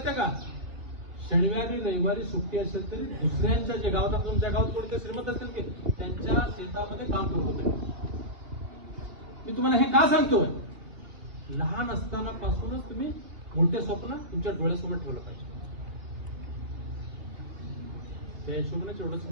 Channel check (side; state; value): left; late; 2.9 ms